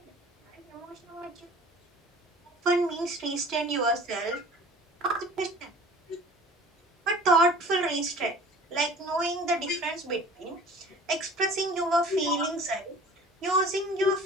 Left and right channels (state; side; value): normal; both; correlation 0.45